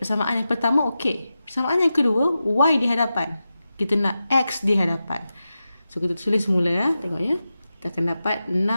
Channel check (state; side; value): inverted; both; correlation -0.92